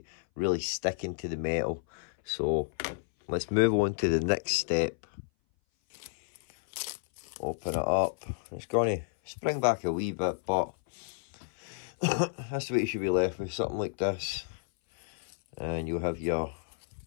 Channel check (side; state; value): right; silent; 57 dB below the other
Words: really sticking to the metal. So let's move on to the next step. open it up. It's going to spring back a wee bit, but that's what you should be left with, something like this. And you'll have your